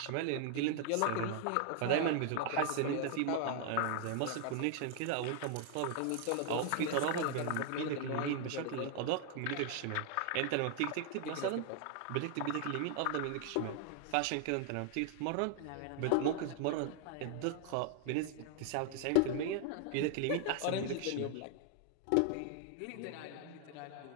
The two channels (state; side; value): different; both; correlation 0.00